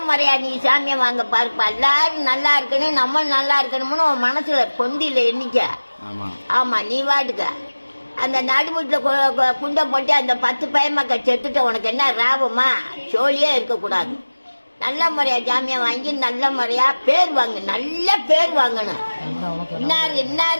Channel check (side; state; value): both; inverted; correlation -1.00